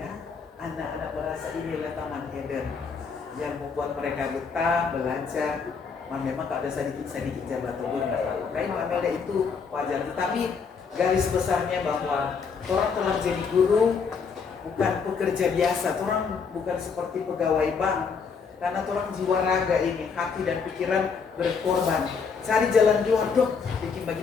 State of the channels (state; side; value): quieter; right; 5.7 dB